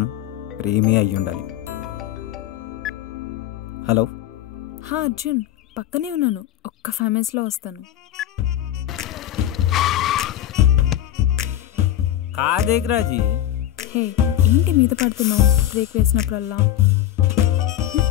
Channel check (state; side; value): quieter; right; 12.2 dB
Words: ప్రేమే అయ్యుండాలి. హలో. అర్జున్, పక్కనే ఉన్నాను, ఒక్క 5 minutesలో వస్తాను. కాదేగ్రాజీ. హే, ఏంటి మీద పడుతున్నావు బ్రేక్ వేసినప్పుడల్లా?